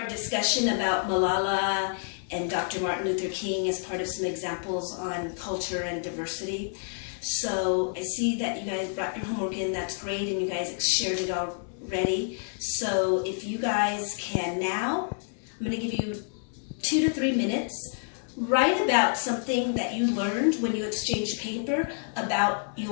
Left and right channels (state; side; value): silent; right; 59 dB below the other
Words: discussion about Malala and Dr. Martin Luther King as part of some examples on culture and diversity. So I see that you guys brought your homework in. That's great, and you guys shared it already. So if you guys can now, I'm going to give you 2 to 3 minutes. Write about something that you learned when you exchanged paper about